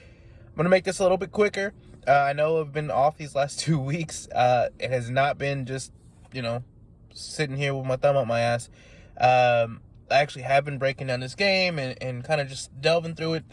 I'm gonna make this a little bit quicker. I know I've been off these last 2 weeks. It has not been just sitting here with my thumb up my ass. I actually have been breaking down this game and kind of just delving through it,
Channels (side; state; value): both; identical; correlation 1.00